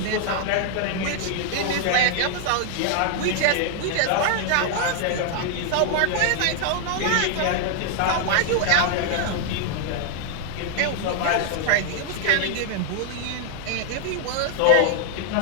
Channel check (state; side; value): different; both; correlation 0.00